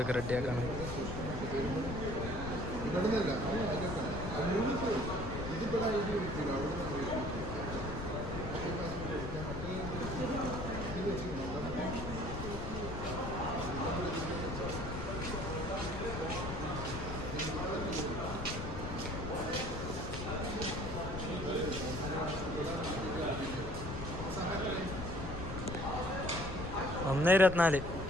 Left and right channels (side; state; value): left; noise; rumble, 6 dB below the sound